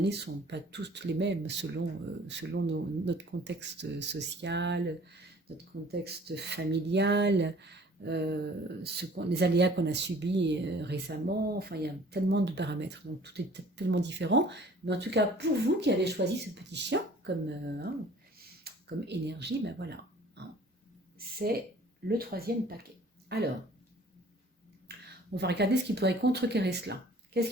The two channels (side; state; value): both; normal; correlation 0.51